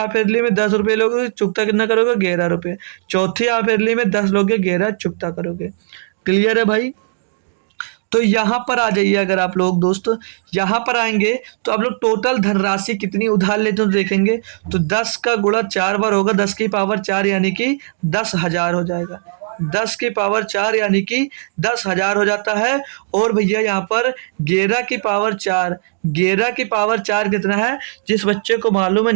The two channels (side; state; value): left; silent; digital silence